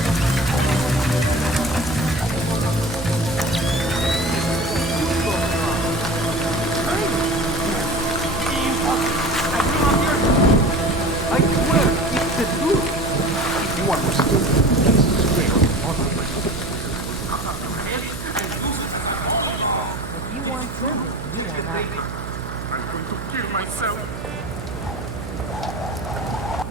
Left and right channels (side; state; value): right; noise; hum, 9 dB below the sound